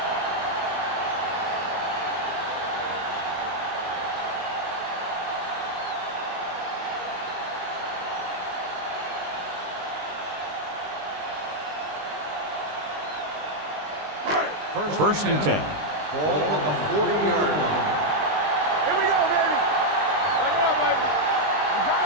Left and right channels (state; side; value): late; left; 20 ms